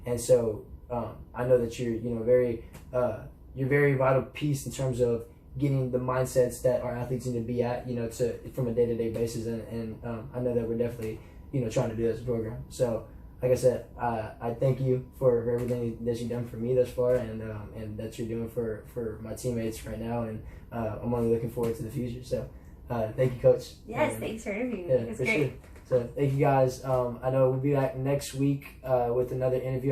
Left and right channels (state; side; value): identical; both; correlation 1.00